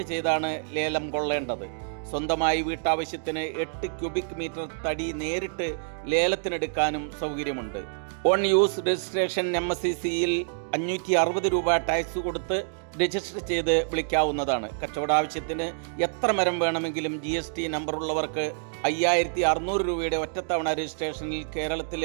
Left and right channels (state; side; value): silent; left; digital silence